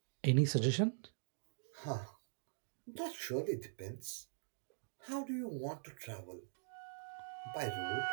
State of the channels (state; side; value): silent; left; digital silence